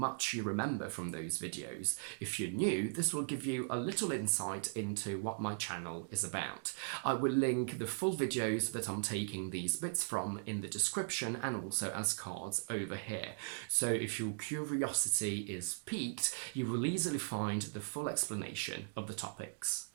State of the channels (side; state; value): left; silent; digital silence